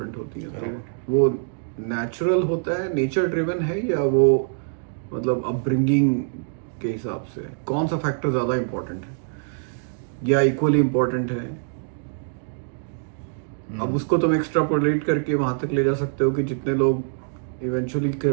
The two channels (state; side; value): silent; left; digital silence